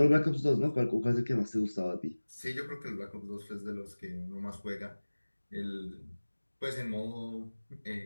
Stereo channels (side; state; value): both; inverted; correlation -1.00